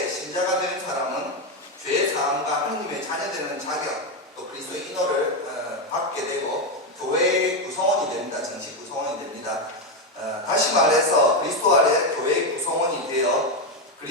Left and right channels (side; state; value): both; normal; correlation 0.08